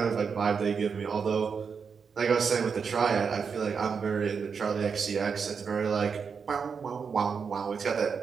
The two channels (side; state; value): left; quieter; 5.9 dB